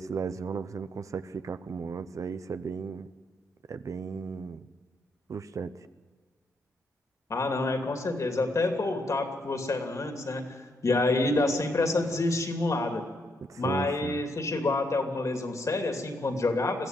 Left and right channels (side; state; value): both; normal; correlation 0.76